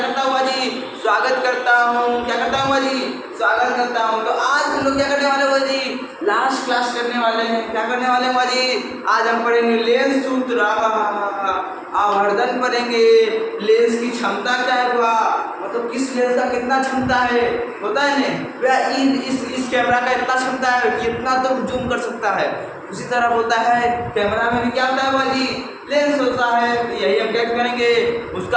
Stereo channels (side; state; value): both; identical; correlation 1.00